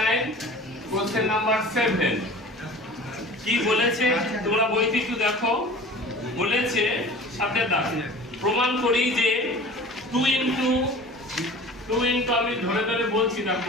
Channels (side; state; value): both; normal; correlation 0.41